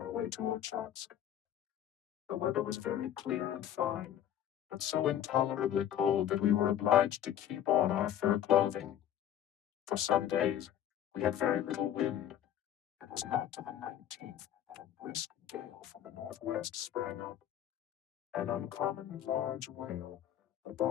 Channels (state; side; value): quieter; right; 10.8 dB